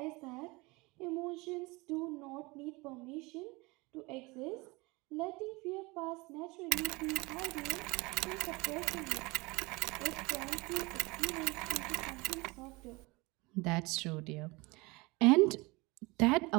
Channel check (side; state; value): left; quieter; 24.5 dB